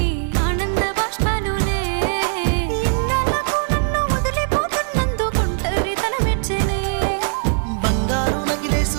ఆనంద బాష్పాలులే ఇన్నాళ్ళకు నన్ను వదిలిపోతున్నందుకు ఒంటరితనం మెచ్చనే బంగారు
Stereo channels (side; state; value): left; silent; digital silence